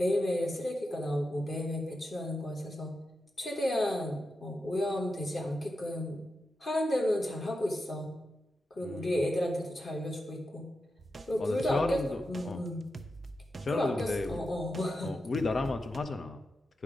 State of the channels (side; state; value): both; normal; correlation 0.89